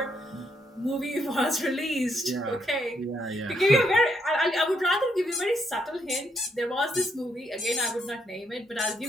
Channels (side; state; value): both; normal; correlation 0.75